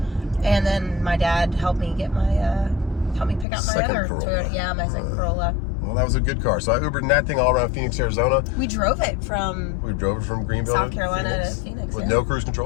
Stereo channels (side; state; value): right; drops out; at 3.5 s